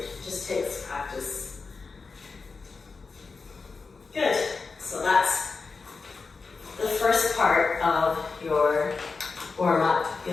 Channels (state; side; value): quieter; right; 4.5 dB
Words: just takes practice. Good. So that's the first part of your warm-up